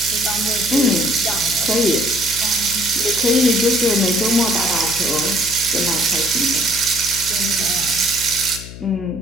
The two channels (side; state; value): left; noise; hum, 13 dB below the sound